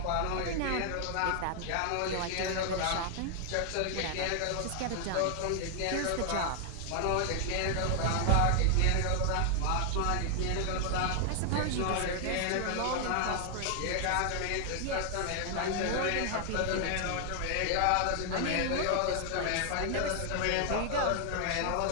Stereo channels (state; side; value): different; both; correlation 0.00